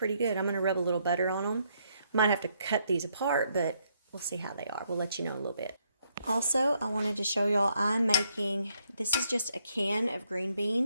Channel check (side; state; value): both; inverted; correlation -0.73